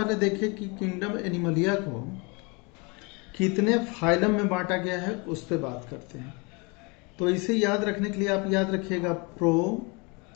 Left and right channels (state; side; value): quieter; right; 29.8 dB